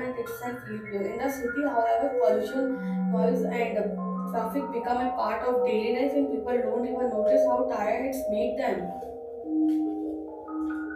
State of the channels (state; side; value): identical; both; correlation 1.00